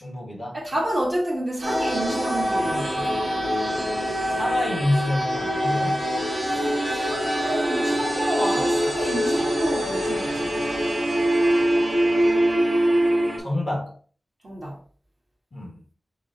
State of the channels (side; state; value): both; normal; correlation 0.95